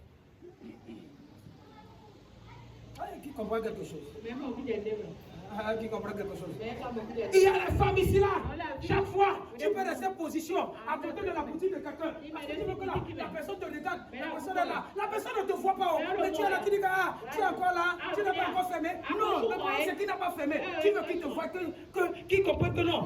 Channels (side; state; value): both; identical; correlation 1.00